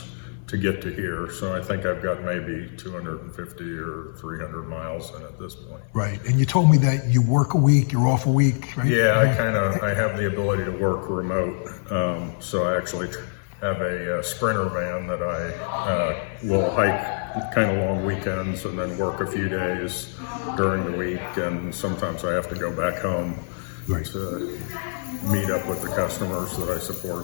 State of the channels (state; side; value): silent; right; 55 dB below the other